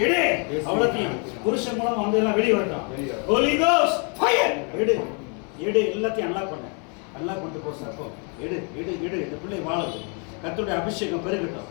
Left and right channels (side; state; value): right; quieter; 36.9 dB